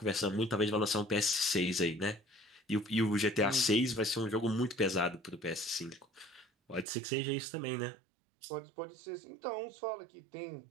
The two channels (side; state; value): left; drops out; at 6.9 s